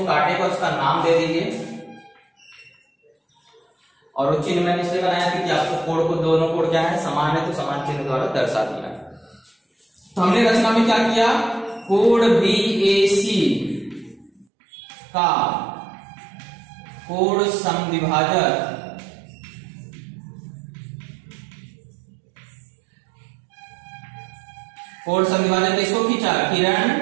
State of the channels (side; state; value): left; drops out; at 14.5 s